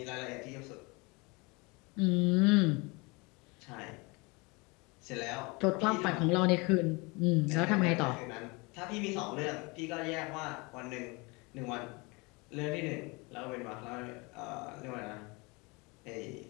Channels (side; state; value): right; quieter; 27.3 dB